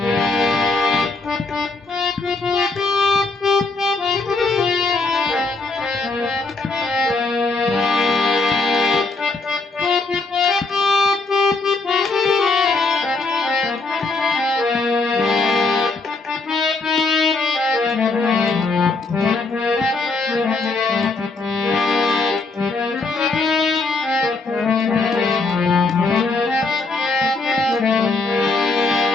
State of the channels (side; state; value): right; quieter; 3.7 dB